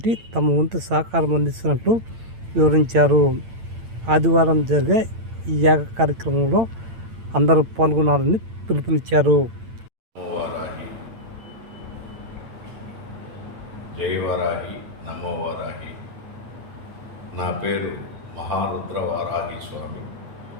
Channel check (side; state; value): left; late; 8.9 ms